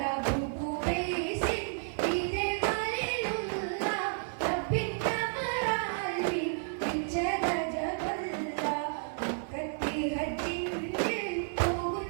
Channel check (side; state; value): left; silent; digital silence